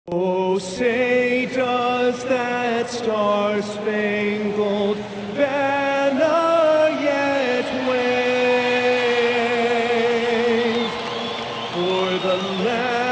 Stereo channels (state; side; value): identical; both; correlation 1.00